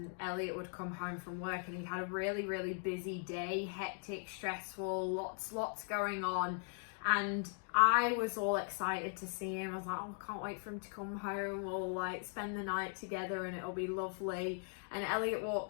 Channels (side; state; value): right; silent; 52 dB below the other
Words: Elliot would come home from work and he had a really, really busy day, hectic, stressful, lots going on. And I was all excited to see him. I was like, oh, I can't wait for him to come home. We'll like spend the night together and it'll be lovely. And Elliot